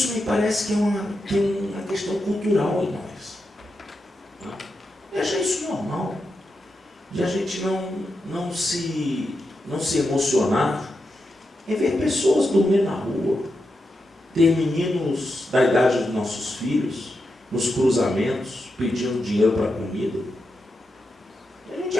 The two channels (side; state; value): both; normal; correlation 0.87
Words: me parece que tem uma questão cultural em nós. Eu achei isso normal, de a gente não se emocionar em ver pessoas dormir na rua, ter meninos da idade dos nossos filhos nos cruzamentos pedindo dinheiro para comida. A gente